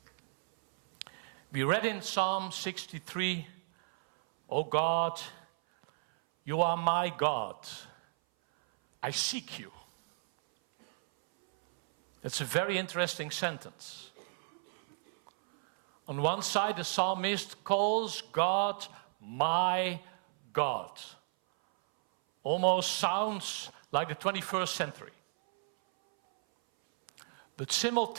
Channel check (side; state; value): left; silent; 56 dB below the other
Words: We read in Psalm 63, "O God, you are my God. I seek you." That's a very interesting sentence. On one side, the psalmist calls God my God. Almost sounds like the 21st century. But